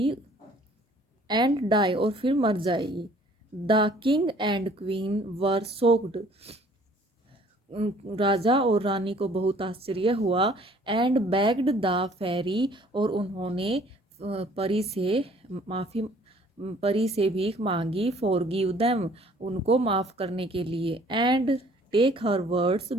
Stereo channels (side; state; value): both; normal; correlation 0.56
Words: एंड डाई, और फिर मर जाएगी. The king and queen were soaked, राजा और रानी को बहुत आश्चर्य हुआ. एंड बेग्ड द फेरी, और उन्होंने परी से माफ़ी परी से भीख मांगी. फॉरगिव देम, उनको माफ़ करने के लिए. And take her words